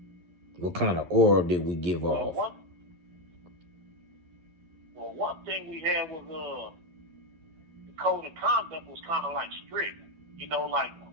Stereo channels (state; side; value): late; left; 11 ms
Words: What kind of aura did we give off? One thing we had was the code of conduct was kind of like strict. You know, like